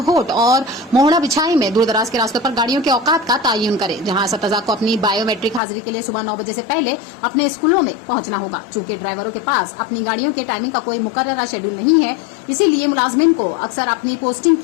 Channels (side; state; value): right; drops out; at 5.6 s